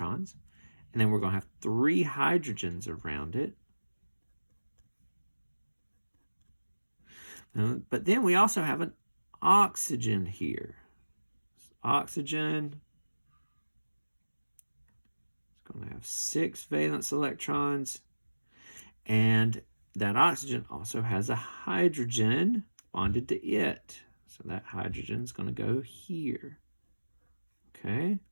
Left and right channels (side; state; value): both; inverted; correlation -1.00